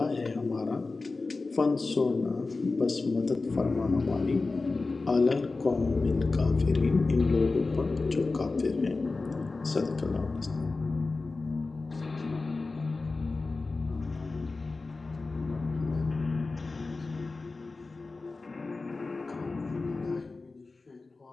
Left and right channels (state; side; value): quieter; right; 3.7 dB